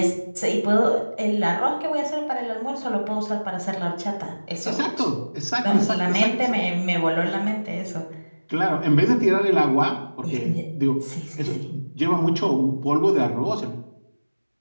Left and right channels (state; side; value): inverted; both; correlation -1.00